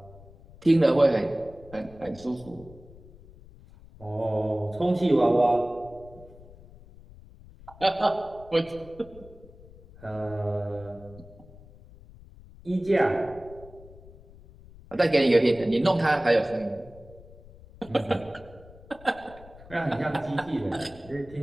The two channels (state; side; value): noise; left; rumble, 21 dB below the sound